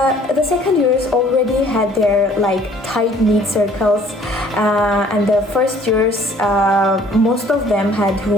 The second years already had their tight-knit circles, and the first years most of them had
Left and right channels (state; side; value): normal; both; correlation 0.56